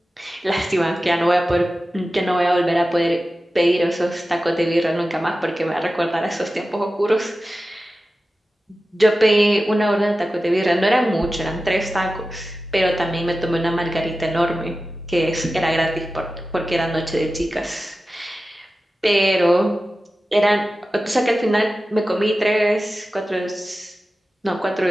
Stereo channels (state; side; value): normal; both; correlation 0.94